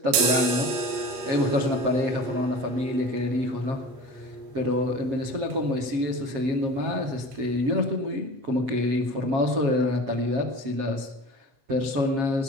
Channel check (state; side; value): late; left; 7.4 ms